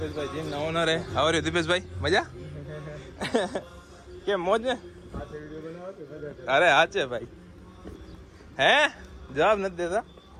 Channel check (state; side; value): identical; both; correlation 1.00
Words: જીમ ના ઓનર. આવર્યું દીપેશભાઈ? મજા કેમ? મોજ ને? અરે હા છે ભાઈ. હે જવાબ નથી દેતા